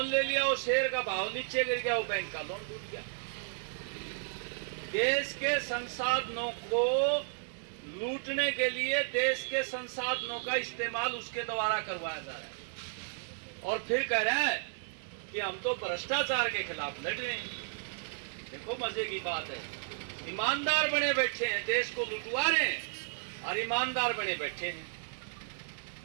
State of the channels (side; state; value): left; silent; digital silence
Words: शेयर का भाव नीचे गिर गया, वो बैंक का लोन टूट गया। देश के संसाधनों को लूटने के लिए देश के संसाधनों का इस्तेमाल उसके द्वारा करवाया जा रहा है और फिर कह रहा है कि हम तो भ्रष्टाचार के खिलाफ लड़ रहे हैं। देखो मजे की बात है, ईमानदार बने बैठे हैं, देश को लुटवा रहे हैं और ईमानदार बने बैठे हैं।